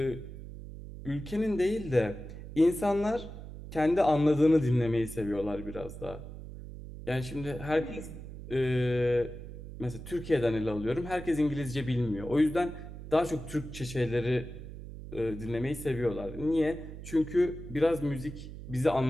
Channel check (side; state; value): right; noise; hum, 12 dB below the sound